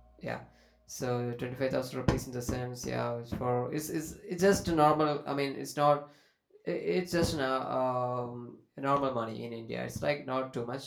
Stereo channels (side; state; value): both; identical; correlation 1.00